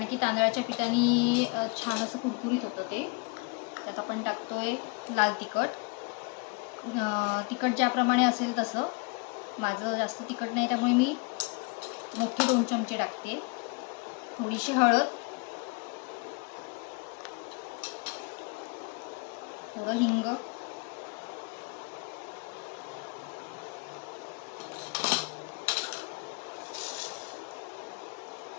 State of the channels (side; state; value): right; quieter; 31.5 dB